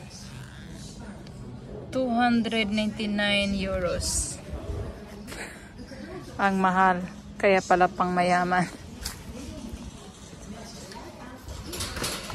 299 euros. Ang mahal. Kaya pala pang mayaman.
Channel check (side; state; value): both; identical; correlation 1.00